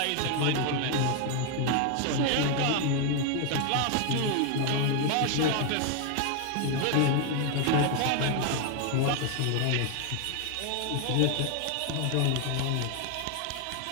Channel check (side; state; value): both; different; correlation 0.00